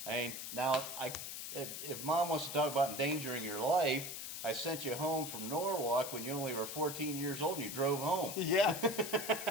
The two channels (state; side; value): noise; left; hiss, 7 dB below the sound